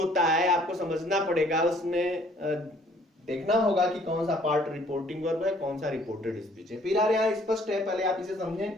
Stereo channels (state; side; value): normal; both; correlation 0.59